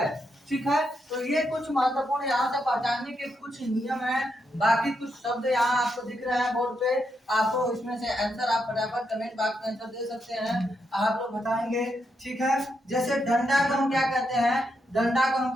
ठीक है, तो ये कुछ महत्वपूर्ण यहाँ से पहचानने के कुछ नियम हैं। बाकी कुछ शब्द यहाँ आपको दिख रहे हैं बोर्ड पे, आपको इसमें से आंसर आप फटाफट कमेंट बॉक्स में आंसर दे सकते हैं, आप लोग बताएंगे। ठीक है, जैसे डंडा को हम क्या कहते हैं, डंडा को हम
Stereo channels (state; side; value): normal; both; correlation 0.81